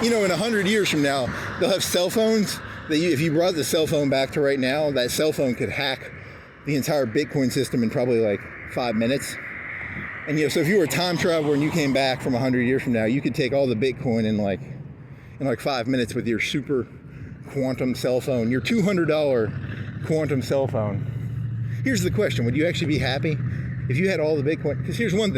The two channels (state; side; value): identical; both; correlation 1.00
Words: You know, in 100 years from now, they'll have cell phones that if you brought the cell phone back to right now, that cell phone could hack the entire Bitcoin system in probably like 5 minutes. And, you know, so if you were a time traveler and you came back from 100 years from now, you could take all the Bitcoin in like 5 minutes with your super quantum cell phone, your $200 quantum cell phone. Here's the question. Would you actually be happy if you had all the Bitcoin? Because here's one